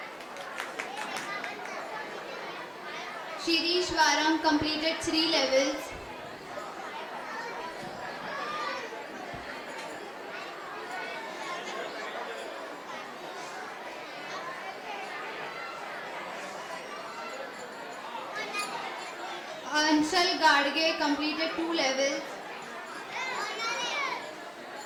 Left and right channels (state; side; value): identical; both; correlation 1.00